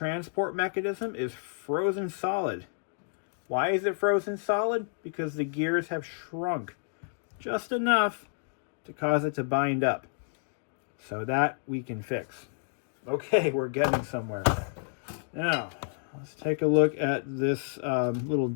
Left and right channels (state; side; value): silent; right; digital silence